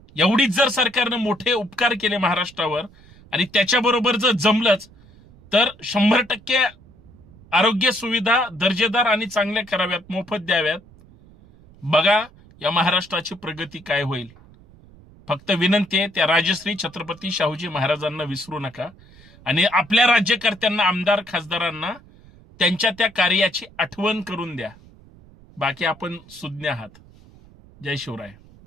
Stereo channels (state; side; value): noise; right; rumble, 24 dB below the sound